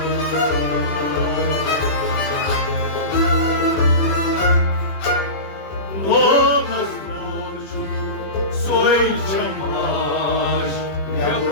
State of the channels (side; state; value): right; late; 20 ms